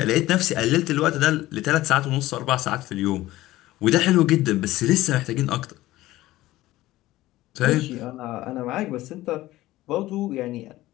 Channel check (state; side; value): quieter; right; 16.7 dB